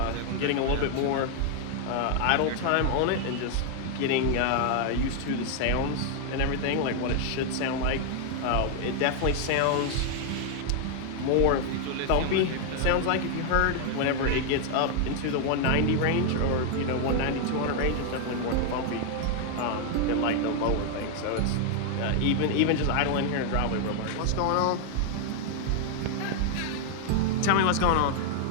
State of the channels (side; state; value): both; different; correlation 0.00